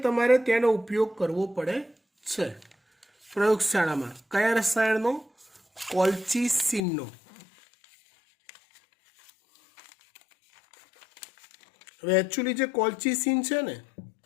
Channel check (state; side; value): drops out; right; at 6.8 s